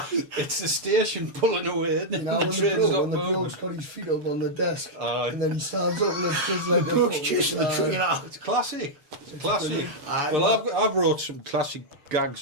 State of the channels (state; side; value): late; left; 6.7 ms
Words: It's the station pulling away, isn't it? You know, The when train's not the moving. bloke's got his feet up on the desk, Aye. and then he stands up and it's just like the bloke's chasing the train out. It's classic. It's classic. Aye. Well, I've wrote some classic gags